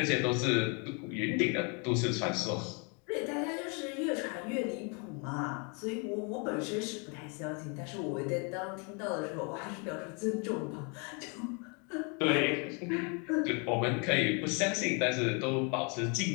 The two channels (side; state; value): right; quieter; 34.6 dB